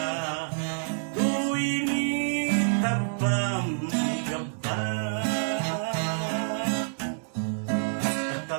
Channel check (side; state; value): left; silent; digital silence